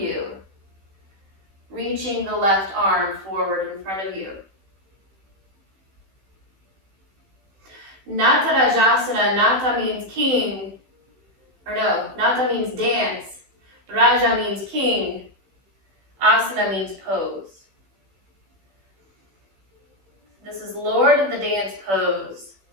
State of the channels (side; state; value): left; late; 15 ms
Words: reaching the left arm forward in front of you. Nata Rajasana, Nata means king, Nata means dance. Raja means king. Asana means pose. This is Lord of the Dance pose.